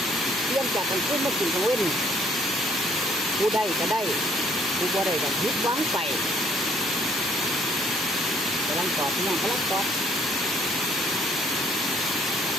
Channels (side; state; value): both; normal; correlation 0.63